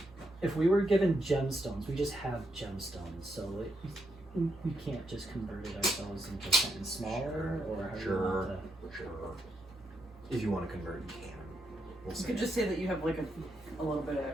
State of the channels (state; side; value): normal; both; correlation 0.80